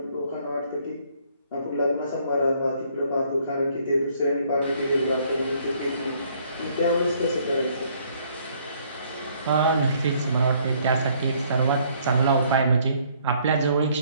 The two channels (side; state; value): both; inverted; correlation -0.64